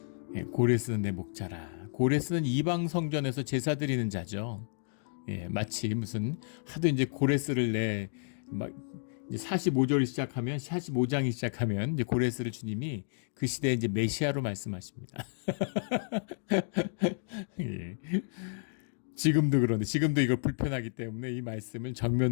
고레스는 내 목자라. 고레스는 이방 성전에서 제사 드리는 자죠. 마치 무슨 하도 이제 고레스를 막 45절이 시작하면 45장이 시작하면 이제 고레스를 주님이 그 시대에 이제 메시아로 말씀하십니다. 예. 지금도 그런데 지금도 이걸 불편하기 때문에 이 말씀을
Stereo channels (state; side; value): silent; right; digital silence